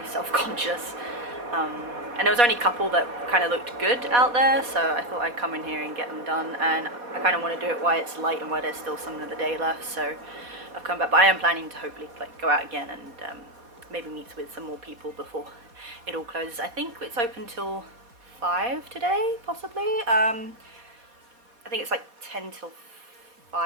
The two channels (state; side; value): late; left; 4.2 ms